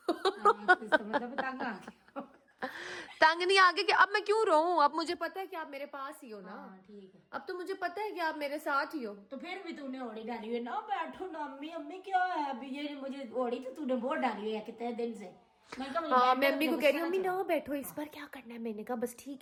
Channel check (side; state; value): both; identical; correlation 1.00